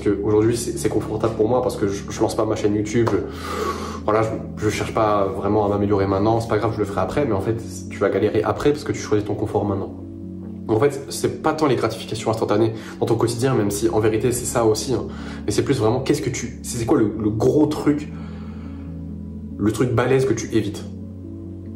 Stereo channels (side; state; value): both; identical; correlation 1.00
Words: c'est confortable pour moi parce que je lance pas ma chaîne YouTube. Voilà, je cherche pas vraiment à m'améliorer maintenant. C'est pas grave, je le ferai après. Mais en fait, tu vas galérer après parce que tu choisis ton confort maintenant. En fait, c'est pas tant les gratifications instantanées dans ton quotidien, même si en vérité c'est ça aussi, hein. Mais c'est plus vraiment c'est quoi le gros truc, le truc balèze que tu évites.